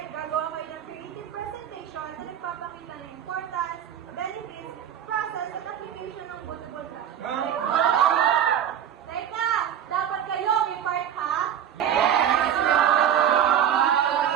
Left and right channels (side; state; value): left; quieter; 9.5 dB